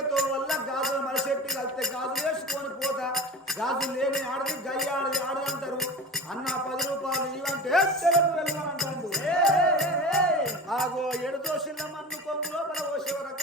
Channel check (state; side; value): normal; both; correlation 0.32